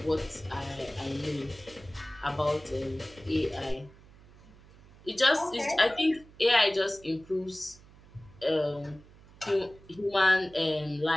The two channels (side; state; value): right; noise; hum, 23 dB below the sound